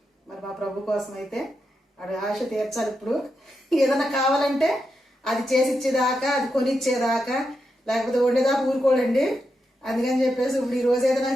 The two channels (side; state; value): both; normal; correlation 0.86